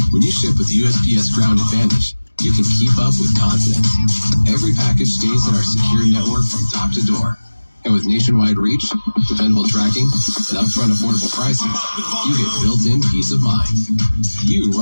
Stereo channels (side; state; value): both; inverted; correlation -1.00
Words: When you ship with USPS Ground Advantage, you can keep up with confidence. Every package stays in our secure network from top to door. And with nationwide reach, dependable tracking, and upfront affordable pricing, you get built-in peace of mind. You